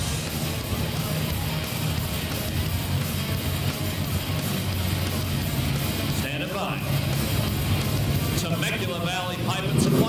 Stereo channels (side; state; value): both; identical; correlation 1.00